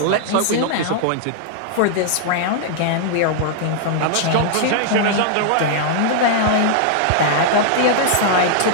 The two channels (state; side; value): different; both; correlation -0.01